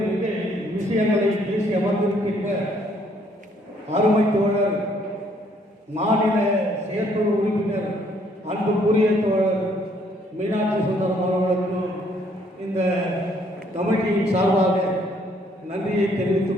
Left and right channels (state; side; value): normal; both; correlation 0.66